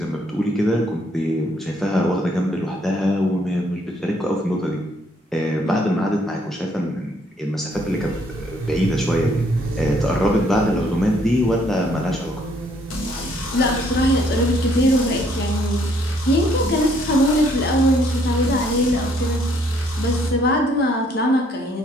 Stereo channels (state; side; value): normal; both; correlation 0.66